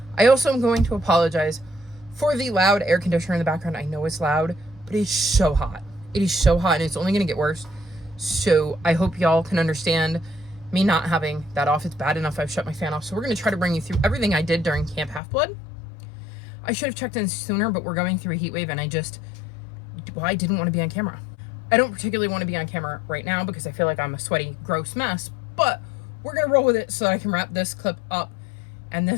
I also am going to apologize for the loud air conditioner in the background. I know it's loud, but it's so hot. It is so hot, and it's only going to get worse. So I hope y'all can understand me not having that off. It's bad enough I've shut my fan off. So we're going to try to bring you through everything I did during Camp Half-Blood. I should have checked in sooner, but we're going through a heat wave, and I didn't want to be on camera. I don't particularly want to be on camera right now because I feel like I'm a sweaty, gross mess, but we're going to roll with it so that I can wrap this clip up and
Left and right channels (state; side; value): drops out; right; at 15.2 s